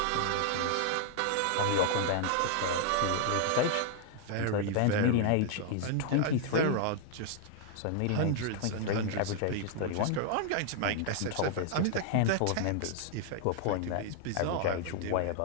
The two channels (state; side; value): different; both; correlation 0.00